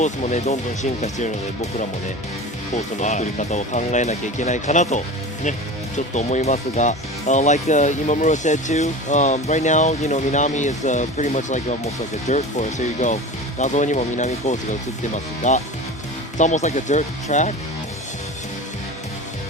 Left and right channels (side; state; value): both; normal; correlation 0.32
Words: ースもねどんどん進化しているので、僕らもねコースの作り方を考えなきゃいけないかなとねちょっと思いますが、like Imamura said too, right now Minami is pretty much like almost like a dirt course. Here you go. 画像にも南コースが映ってますが、it's almost like a dirt track,